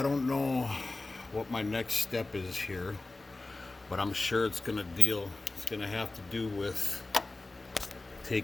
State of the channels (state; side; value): quieter; right; 3.2 dB